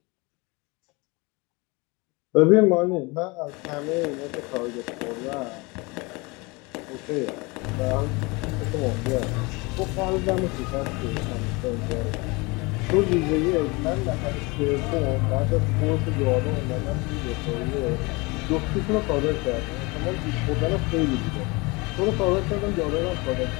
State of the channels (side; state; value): right; quieter; 26.2 dB